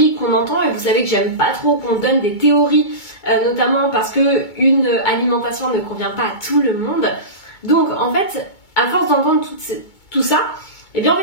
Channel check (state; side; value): late; right; 2.2 ms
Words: qu'on entend, et vous savez que j'aime pas trop qu'on donne des théories, notamment parce qu'une alimentation ne convient pas à tout le monde. Donc en fait, à force d'entendre tout ça, et bien en